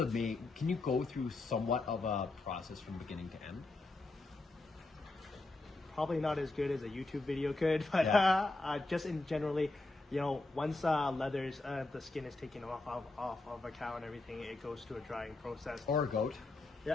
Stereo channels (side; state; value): right; quieter; 3.1 dB